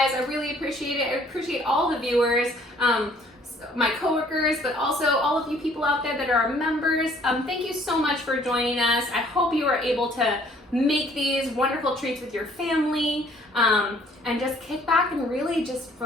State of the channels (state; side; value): normal; both; correlation 0.59